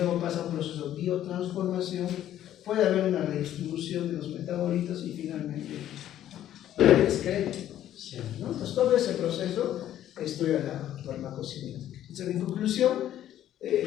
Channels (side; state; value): right; quieter; 11.9 dB